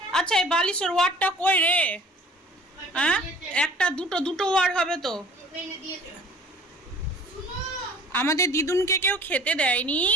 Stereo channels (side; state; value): both; normal; correlation 0.49